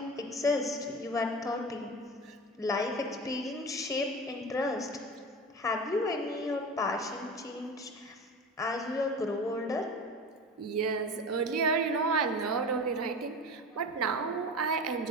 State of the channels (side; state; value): both; normal; correlation 0.32